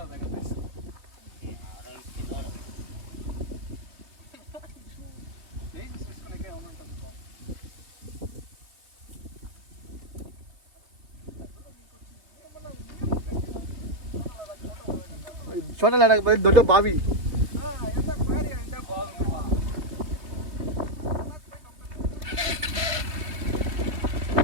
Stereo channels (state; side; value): late; left; 3.5 ms